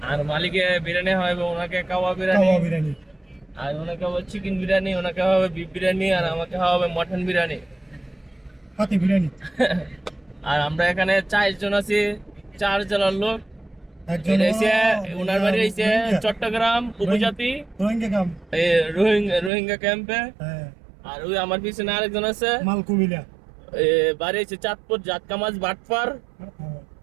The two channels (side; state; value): left; drops out; at 19.5 s